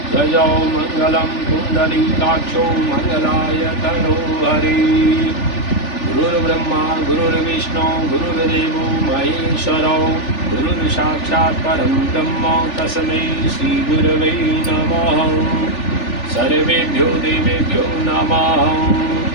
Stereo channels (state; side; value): late; right; 3.4 ms